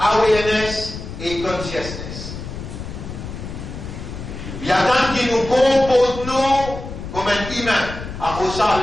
et consciousness. Il y a tant qui nous comporte nous comme un humain. Après ça,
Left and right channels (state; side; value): noise; left; rumble, 9 dB below the sound